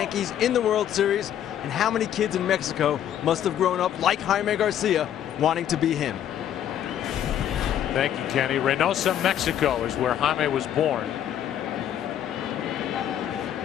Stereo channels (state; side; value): quieter; right; 10.4 dB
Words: in the World Series. And how many kids in Mexico must have grown up like Jaime Garcia wanting to be him? Thank you, Kenny. Reynosa, Mexico is where Jaime was born.